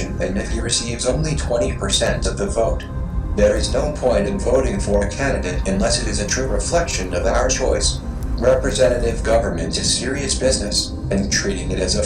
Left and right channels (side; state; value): both; identical; correlation 1.00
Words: than if he receives only 20% of the vote. There is no point in voting for a candidate unless it is a true reflection of our choice. Representative government is serious business, and treating it as a